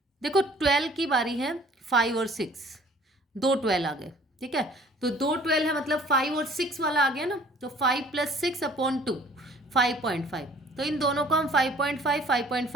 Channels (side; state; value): both; normal; correlation 0.54